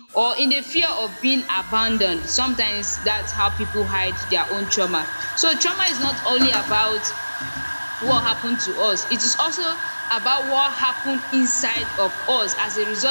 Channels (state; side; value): inverted; both; correlation -1.00